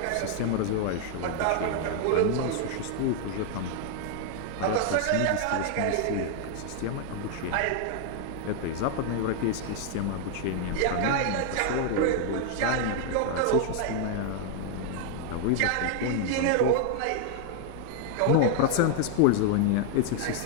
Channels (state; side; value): different; both; correlation 0.00